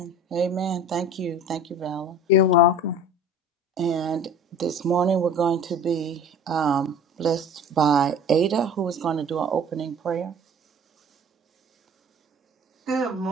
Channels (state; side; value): normal; both; correlation 0.43